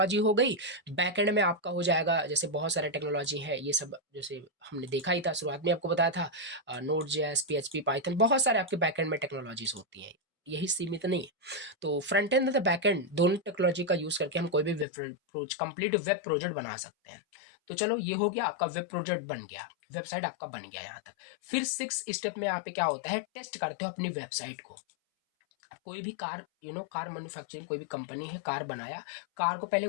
हो गई। बैक एंड में आपका हो जाएगा, जैसे बहुत सारे टेक्नोलॉजी है, ये सब जैसे हमने देखा ही था, शुरुआत में आपको बताया था Node.js, PHP, पाइथन, बहुत सारे आपके बैक एंड में टेक्नोलॉजीज होती हैं, यही सीमित नहीं है। तो फ्रंट एंड और बैक एंड दोनों टेक्नोलॉजी का यूज करके हम कोई भी कंप्लीट वेब प्रोजेक्ट बना सकते हैं। तो चलो ये हो गया, आपका वेब प्रोजेक्ट बन गया, वेबसाइट आपका बन गया यहाँ तक। फिर 6 स्टेप में यहाँ पे क्या होता है, टेस्ट करते हो अपनी वेबसाइट को। कोई भी कार कार मैन्युफैक्चरिंग, कोई भी कंपनी है, कार बनाया, कार को पहले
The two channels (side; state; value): right; drops out; at 14.9 s